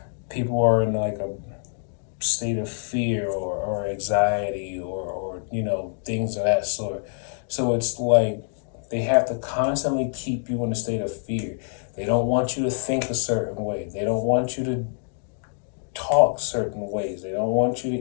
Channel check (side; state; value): right; silent; digital silence